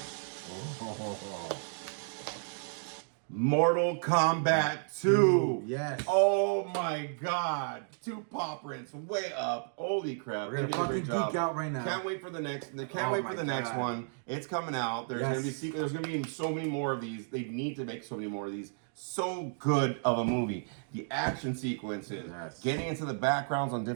Mortal Kombat 2. Yes. Oh my God. 2 paw prints way up. Holy crap. We're gonna fucking geek out right now. Can't wait for the next. Can't wait for the next one. It's coming out. There's gonna be There's gonna be so many more of these. They need to make so many more of these. So good of a movie. The action sequences, getting into the backgrounds on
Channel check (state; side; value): silent; left; digital silence